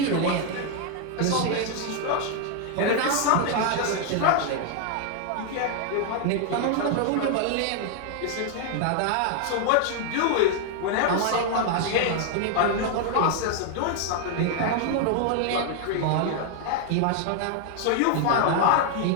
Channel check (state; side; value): different; both; correlation 0.00